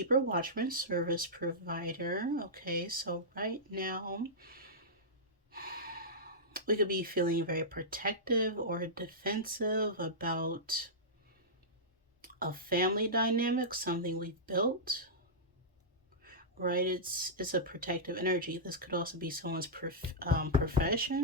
watchman, service provider. Okay, so right now we could be feeling very protective or defensive about a family dynamic, something we've built. right? It's a protective energy. This could also be someone's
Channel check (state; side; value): normal; both; correlation -0.13